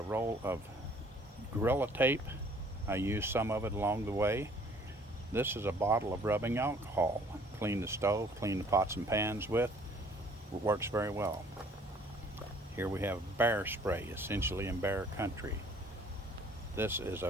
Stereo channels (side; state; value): both; normal; correlation 0.56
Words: roll of Gorilla Tape. I use some of it along the way. This is a bottle of rubbing alcohol. Clean the stove, clean the pots and pans with. It works very well. Here we have bear spray, essentially in bear country. This is a